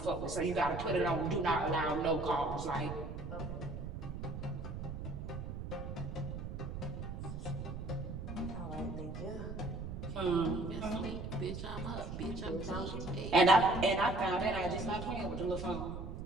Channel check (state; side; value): noise; right; rumble, 7 dB below the sound